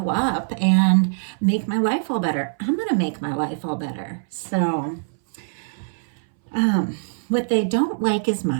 up and make my life all better. I'm going to make my life all better. So, what they don't like as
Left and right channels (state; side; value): silent; left; 61 dB below the other